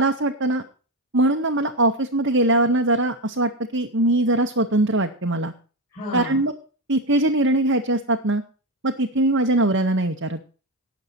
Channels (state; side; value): normal; both; correlation 0.12